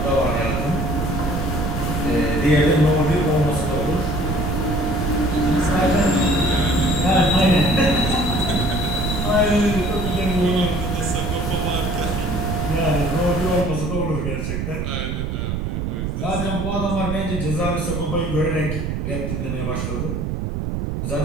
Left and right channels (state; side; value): noise; right; rumble, 2 dB below the sound